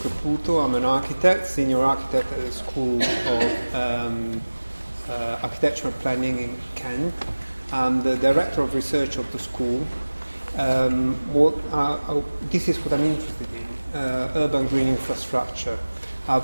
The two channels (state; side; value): inverted; both; correlation -1.00